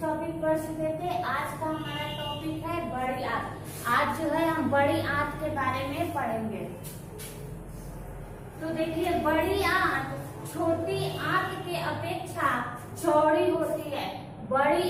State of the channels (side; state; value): both; identical; correlation 1.00